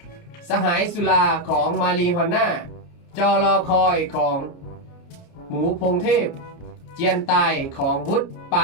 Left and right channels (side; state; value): right; late; 29 ms